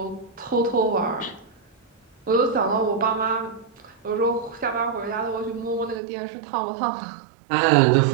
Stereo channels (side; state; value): left; drops out; at 6.0 s